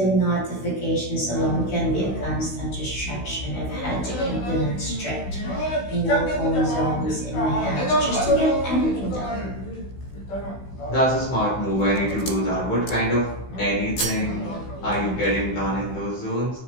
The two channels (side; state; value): right; late; 16 ms